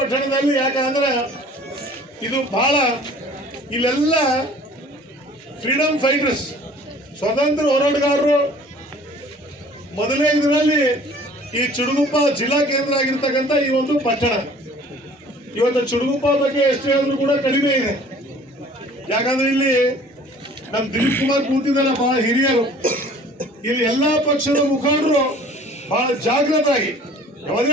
ಯಾಕಂದ್ರೆ ಇದು ಬಹಳ ಇಲ್ಲೆಲ್ಲ ಫ್ರೀಡಮ್ ಫೈಟರ್ಸ್, ಸ್ವತಂತ್ರ ಹೋರಾಟಗಾರರು. ಮೊದಲನೇ ಇದರಲ್ಲಿ ಈ ಚುಟುಗುಪ್ಪ ಜಿಲ್ಲಾ ಕೇಂದ್ರ ಆಗಿರ್ತಕ್ಕಂಥ ಈ ಒಂದು ಪಟ್ಟಣ, ಇವತ್ತು ಚುಟುಗುಪ್ಪ ಬಗ್ಗೆ ಎಷ್ಟು ಹೇಳಿದ್ರು ಕೂಡ ಕಡಿಮೆ ಇದೆ. ಯಾಕಂದ್ರೆ ಇಲ್ಲಿ ನಮ್ಮ ದಿಲೀಪ್ ಕುಮಾರ್ ಕೂತಿದ್ದಲ್ಲ, ಬಹಳ ಹಿರಿಯರು, ಇಲ್ಲಿ ಎಲ್ಲಾ ಪಕ್ಷದ ಮುಖಂಡರು ಬಹಳ ಜಾಗೃತರಾಗಿ,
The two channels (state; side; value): normal; both; correlation 0.50